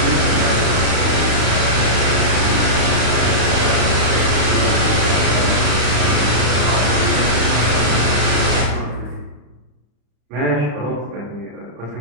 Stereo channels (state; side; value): late; left; 34 ms